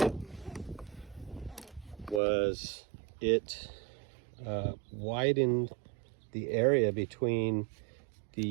was it widened the area between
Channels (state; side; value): drops out; left; at 2.2 s